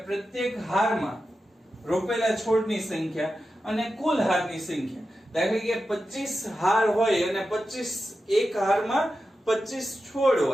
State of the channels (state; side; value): normal; both; correlation 0.91